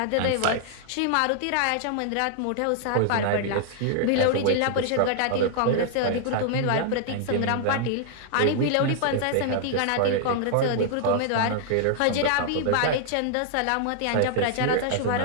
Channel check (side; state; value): both; different; correlation -0.01